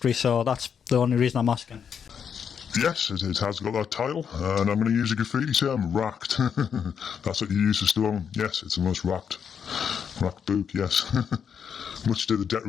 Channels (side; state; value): right; quieter; 7.4 dB